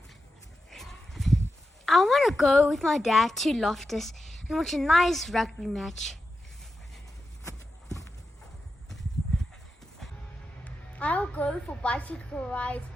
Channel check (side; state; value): both; normal; correlation 0.89